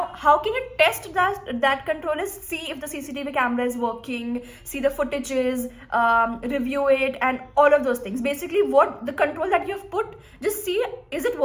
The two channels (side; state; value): both; identical; correlation 1.00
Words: how can you test that control? Is see if the CCTV camera is working, see the footages, review it, and all of those things. Basically, what the control that you have put, just see, is it